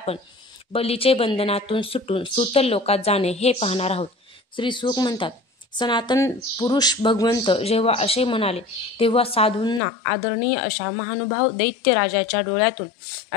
बलीचे बंधनातून सुटून सूतल लोकात जाणे हे पाहणार आहोत. श्री सुख म्हणतात, सनातन पुरुष भगवंत जेव्हा असे म्हणाले तेव्हा साधूंना आदरणीय अशा महानुभाव दैत्य राजाच्या डोळ्यातून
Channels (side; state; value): right; drops out; at 9.8 s